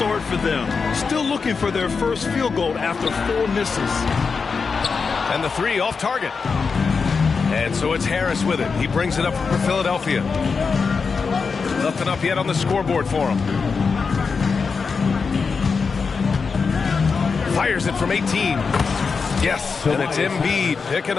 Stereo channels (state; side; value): quieter; right; 5.1 dB